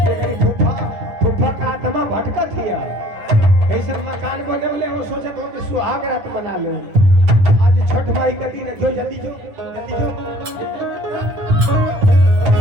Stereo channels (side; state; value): left; late; 10 ms